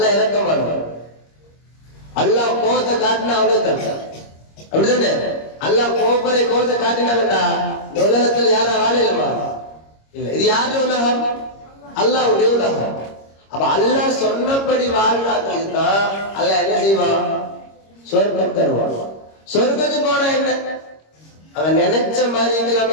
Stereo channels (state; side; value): late; right; 26 ms